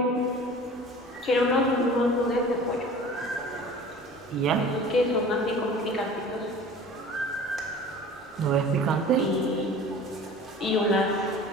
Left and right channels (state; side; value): normal; both; correlation 0.42